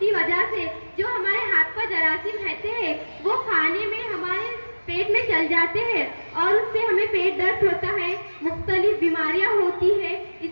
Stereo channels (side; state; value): both; inverted; correlation -1.00